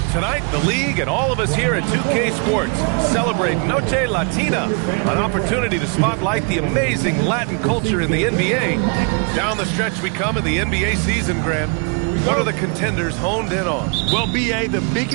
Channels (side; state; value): left; quieter; 37.1 dB